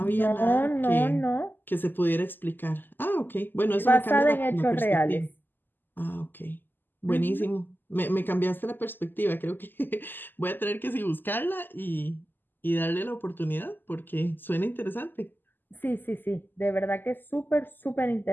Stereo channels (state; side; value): late; right; 0.091 ms